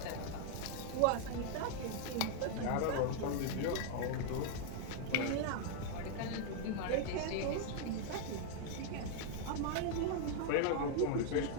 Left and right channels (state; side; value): different; both; correlation 0.00